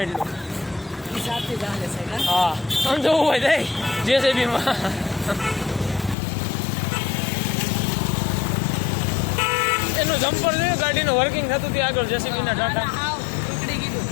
એટલું સાથે ચાલે છે કા હા આમ જોવું હોય જાય જેસીબી માં એનું જમ્પર જોયું ગાડીનું વર્કિંગ થતું હતું આગળ જેસીબી ના ટાટા હાવ ટુકડી કીધું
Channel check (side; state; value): right; drops out; at 6.2 s